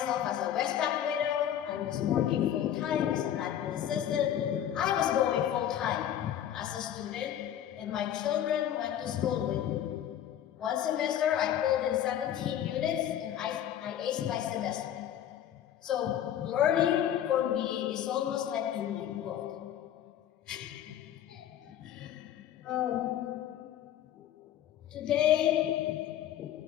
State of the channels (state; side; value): quieter; right; 10.7 dB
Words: as a Westpac widow. I was working full-time as an admin assistant. I was going full-time as a student, and my children went to school with me. One semester, I pulled in 17 units, and I aced my semester. So learning for me is almost like in my blood. Today,